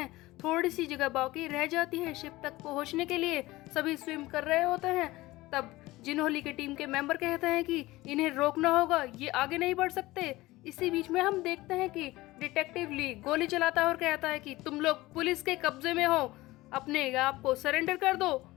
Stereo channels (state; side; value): quieter; right; 18.9 dB